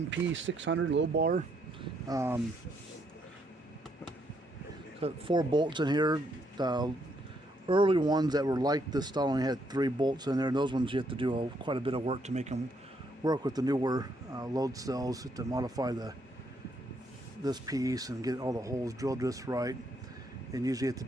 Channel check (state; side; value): normal; both; correlation 0.73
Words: low bar. Got 4 bolts in here. The early ones that were like this style only had 3 bolts in there, and those ones you have to do quite a bit of work to make them work with the newer load cells. You have to modify this piece and get all the holes drilled just right, and usually you have to